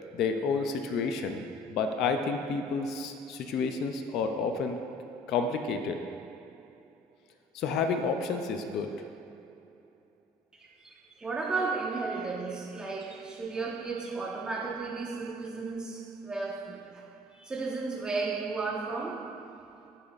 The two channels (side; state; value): both; normal; correlation 0.50